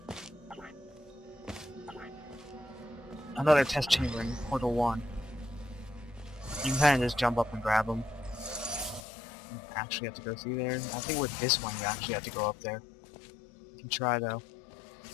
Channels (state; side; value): drops out; right; at 9.0 s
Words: test chamber in Portal 1. You can kind of just jump up and grab them. You actually have to go through there. I think with this one, you actually have to go up there. You can try though.